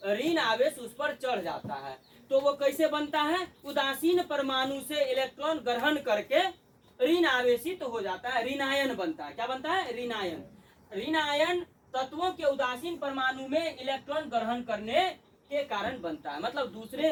ऋण आवेश उस पर चढ़ जाता है। तो वो कैसे बनता है, उदासीन परमाणु से इलेक्ट्रॉन ग्रहण करके ऋण आवेशित हो जाता है, ऋण आयन बनता है। क्या बनता है, ऋण आयन। ऋण आयन तत्वों के उदासीन परमाणु में इलेक्ट्रॉन ग्रहण करने के कारण बनता है। मतलब दूसरे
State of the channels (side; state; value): both; identical; correlation 1.00